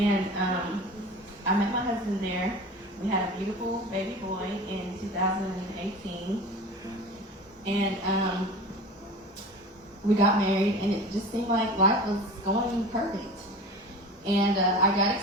I met my husband there. We had a beautiful baby boy in 2018. And we got married, and it just seemed like life was going perfect. And I got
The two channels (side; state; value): both; normal; correlation 0.35